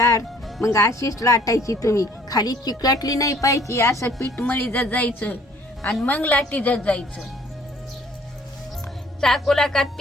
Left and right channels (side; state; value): both; normal; correlation 0.58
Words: मग अशीच लाटायची तुम्ही. खाली चिकटली नाही पाहिजे. असं पीठ मळी जायचं आणि मग लाटी जायचं. चाकूला का